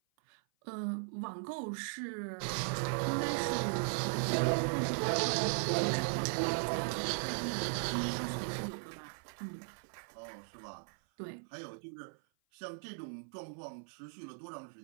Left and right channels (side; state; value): left; silent; 53 dB below the other